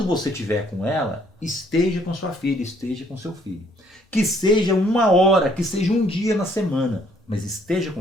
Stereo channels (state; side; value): normal; both; correlation 0.65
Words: você estiver com ela, esteja com sua filha, esteja com seu filho. Que seja 1 hora, que seja um dia na semana, mas esteja